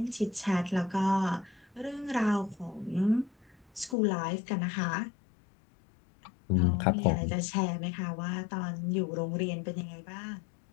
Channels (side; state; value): right; drops out; at 4.0 s